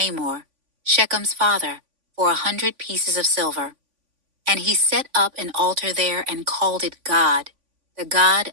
Shechem's father, for 100 pieces of silver. And he set up an altar there and called it God, the God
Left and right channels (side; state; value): left; late; 3.5 ms